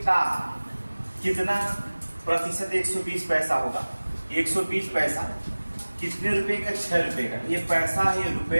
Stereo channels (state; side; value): inverted; both; correlation -1.00